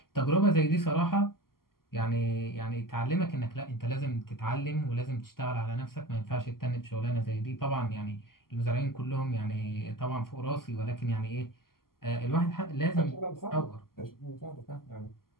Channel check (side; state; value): right; late; 0.92 ms